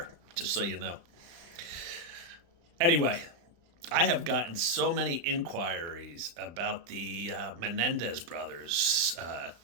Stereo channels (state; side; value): late; left; 35 ms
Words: just so you know. Anyway, I have gotten so many inquiries about the Menendez brothers